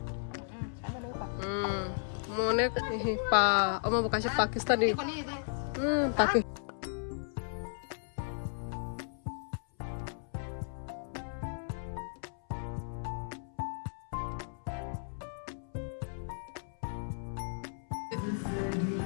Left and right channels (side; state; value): right; silent; 54 dB below the other